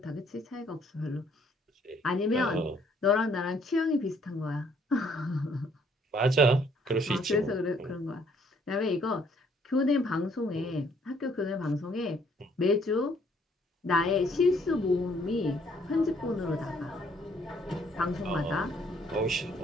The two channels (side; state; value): both; normal; correlation 0.65